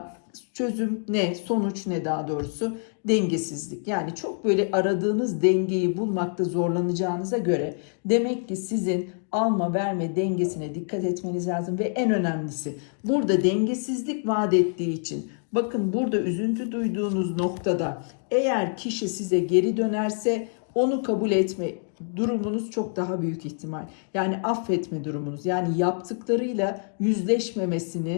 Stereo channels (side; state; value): right; silent; 61 dB below the other